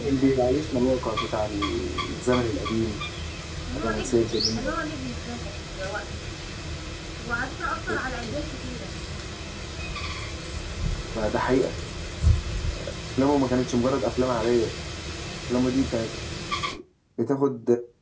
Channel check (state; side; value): identical; both; correlation 1.00